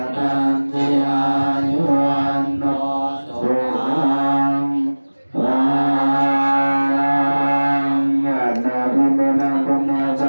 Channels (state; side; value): inverted; both; correlation -1.00